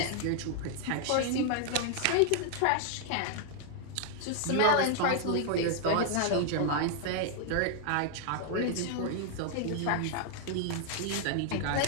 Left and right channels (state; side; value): different; both; correlation 0.00